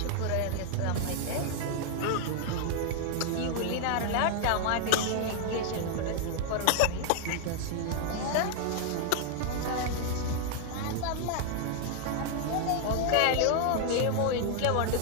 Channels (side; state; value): both; different; correlation 0.00